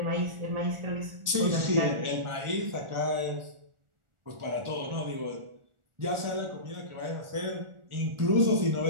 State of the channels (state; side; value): late; left; 1.4 ms